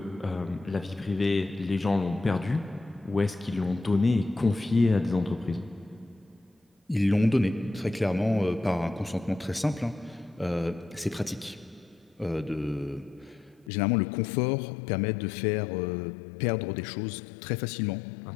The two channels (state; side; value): drops out; right; at 13.7 s